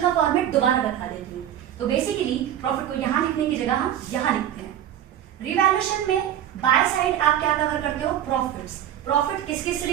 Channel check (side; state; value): left; quieter; 11.0 dB